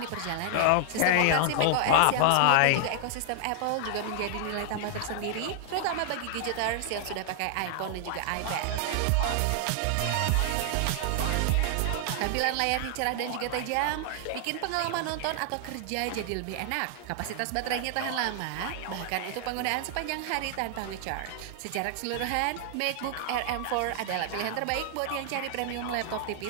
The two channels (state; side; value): different; both; correlation 0.00